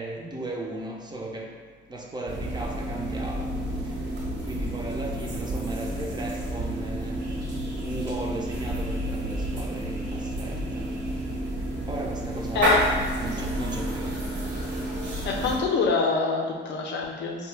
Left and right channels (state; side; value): normal; both; correlation 0.41